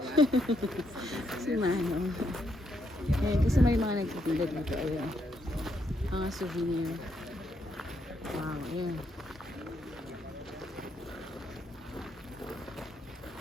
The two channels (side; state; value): both; normal; correlation 0.77